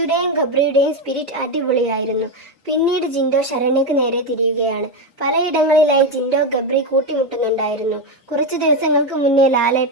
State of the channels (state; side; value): normal; both; correlation 0.09